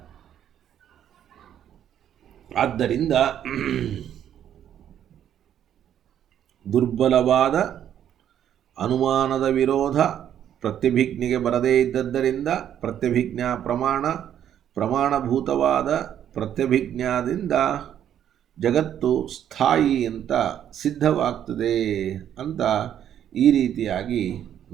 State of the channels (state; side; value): quieter; left; 10.1 dB